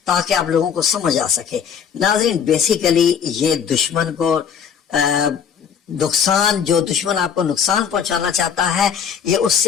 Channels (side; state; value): right; quieter; 7.5 dB